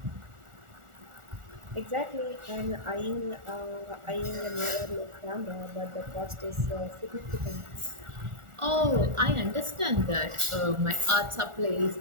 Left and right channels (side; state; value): left; late; 1.4 ms